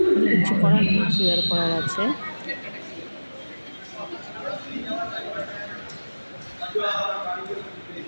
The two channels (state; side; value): inverted; both; correlation -1.00